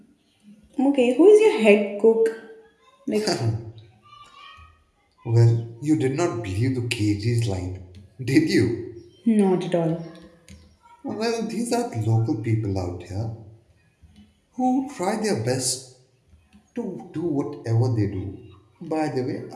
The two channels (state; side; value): identical; both; correlation 1.00